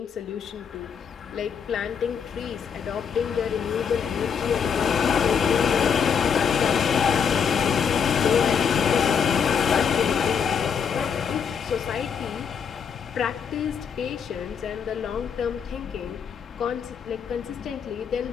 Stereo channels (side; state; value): right; quieter; 6.9 dB